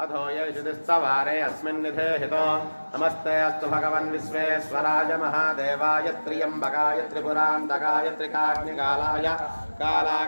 अथो येषुतिस्तवारे अस्मिन्निधे हितो नमस्ते अस्तु भगवन् विश्वेश्वराय महादेवाय त्र्यम्बकाय त्रिपुरान्तकाय त्रिकाग्निकालाय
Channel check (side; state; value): both; inverted; correlation -1.00